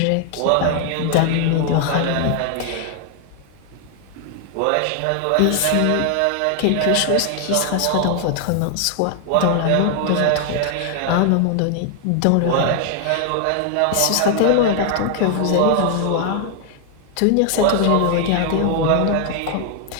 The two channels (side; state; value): both; different; correlation 0.00